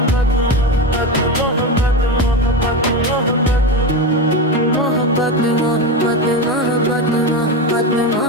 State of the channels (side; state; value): both; normal; correlation 0.18